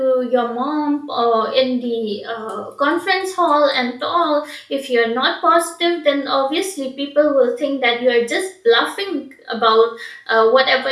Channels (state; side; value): identical; both; correlation 1.00